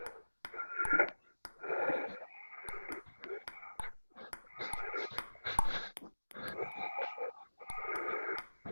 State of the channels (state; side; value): inverted; both; correlation -1.00